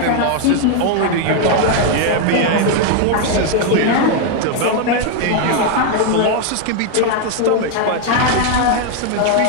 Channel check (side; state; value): both; different; correlation 0.01